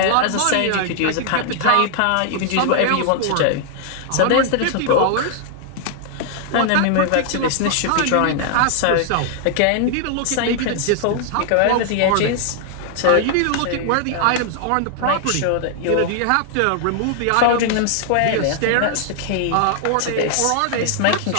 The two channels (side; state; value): both; different; correlation 0.00